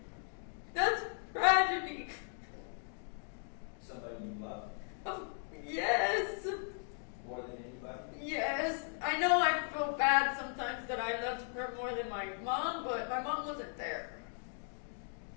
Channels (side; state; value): right; silent; 53 dB below the other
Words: That's tragedy. Somebody you love Yes. more than anybody? Yes. I know I feel bad sometimes that I loved her more than my mom, but my mom wasn't there.